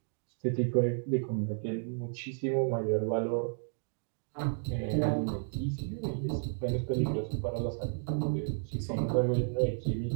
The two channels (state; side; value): silent; left; digital silence